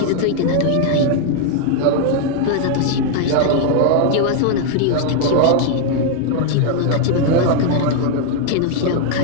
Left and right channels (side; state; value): both; different; correlation 0.00